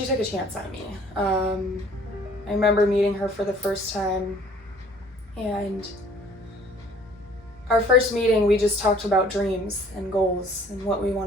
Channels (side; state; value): both; normal; correlation 0.55